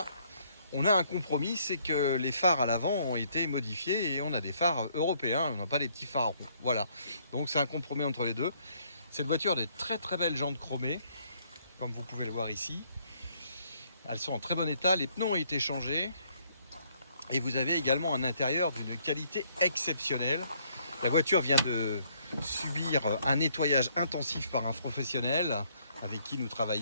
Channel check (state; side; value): inverted; both; correlation -0.67